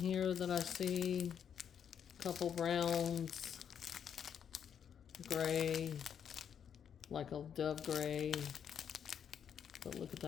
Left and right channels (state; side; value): quieter; right; 8.2 dB